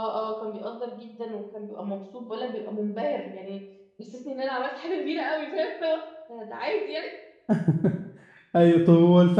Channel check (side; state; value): both; identical; correlation 1.00